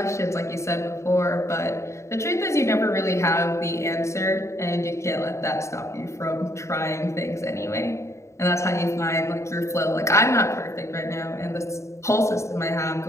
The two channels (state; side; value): late; right; 0.14 ms